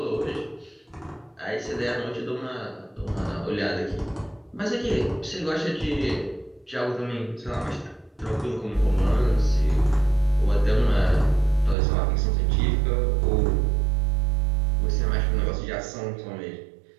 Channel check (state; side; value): drops out; left; at 11.8 s